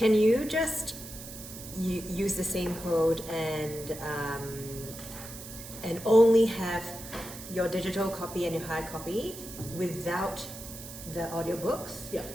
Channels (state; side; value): noise; right; hiss, 12 dB below the sound